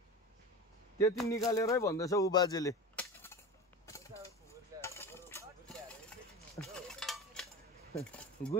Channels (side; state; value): both; normal; correlation 0.30